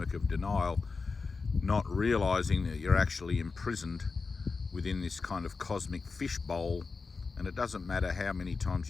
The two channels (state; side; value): quieter; right; 4.5 dB